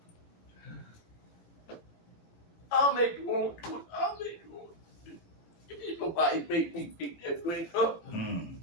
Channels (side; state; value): right; late; 18 ms